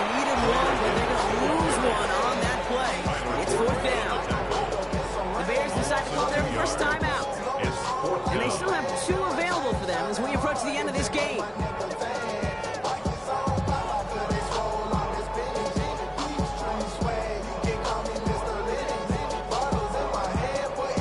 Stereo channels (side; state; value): both; identical; correlation 1.00